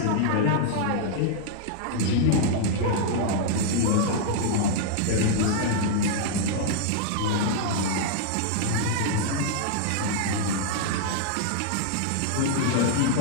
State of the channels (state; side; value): different; both; correlation -0.01